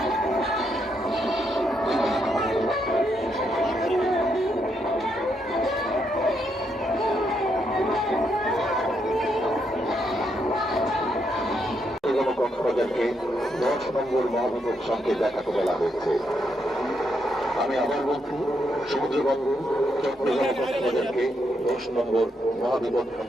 কক্সবাজারকে 10 নম্বর মহাবিপদ সংকেত দেখাতে বলা হয়েছে। আমি আবার বলছি, সমুদ্রবন্দর চট্টগ্রাম কক্সবাজারকে 10 নম্বর মহাবিপদ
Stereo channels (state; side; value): normal; both; correlation 0.78